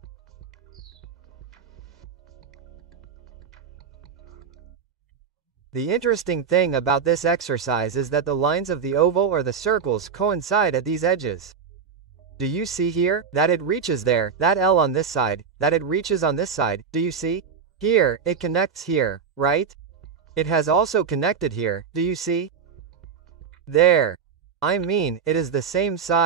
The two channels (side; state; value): left; quieter; 6.4 dB